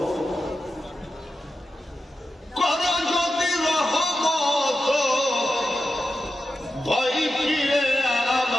কর যদি রহমত ভয় ফিরে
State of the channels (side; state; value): both; normal; correlation 0.90